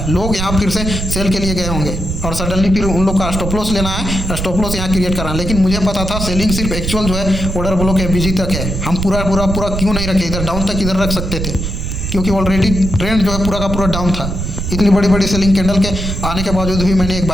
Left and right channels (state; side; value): noise; right; rumble, 4 dB below the sound